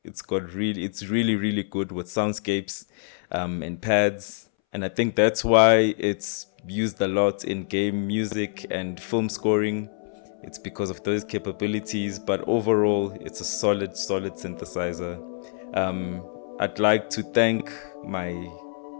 it's really good with soundscapes and pads, and I think that's why it's used a lot in game music and film scoring. It's because of those capabilities, but overall, it's a solid synthesizer. I'd like to thank my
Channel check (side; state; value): right; silent; 61 dB below the other